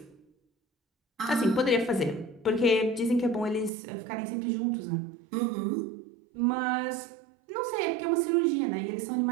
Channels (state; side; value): drops out; left; at 3.7 s